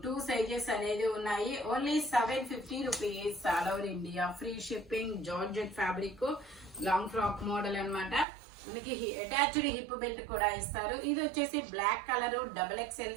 2 సైజెస్ అనేది ఉన్నాయి. Only 750 rupees all over India, free shipping. Georgette fabric, long frock model అన్నమాట. మనకి అటాచ్డ్ హిప్ బెల్ట్ కూడా ఇస్తారు. ఇది వచ్చేసి black colour XXL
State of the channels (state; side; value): drops out; left; at 8.2 s